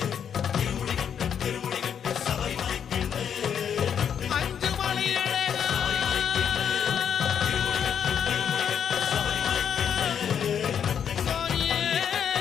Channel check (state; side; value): quieter; right; 8.1 dB